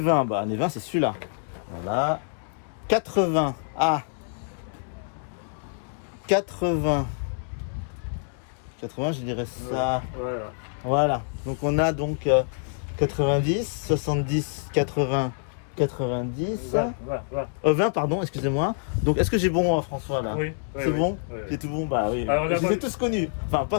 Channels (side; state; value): right; silent; digital silence